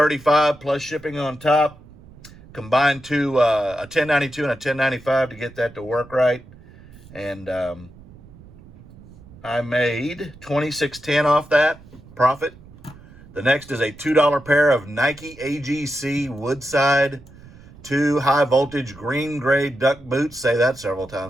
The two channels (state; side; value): noise; right; rumble, 21 dB below the sound